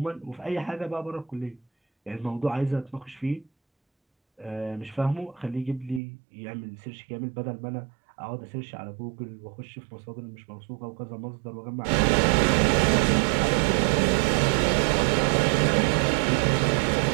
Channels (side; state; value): left; drops out; at 6.0 s